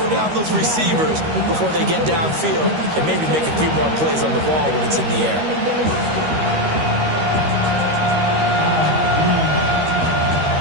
down those receivers before they get downfield and maybe make a few more plays on the ball when it's in the air.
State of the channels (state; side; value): late; left; 13 ms